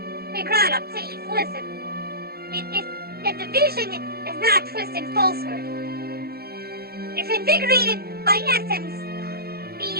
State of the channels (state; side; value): late; left; 0.45 ms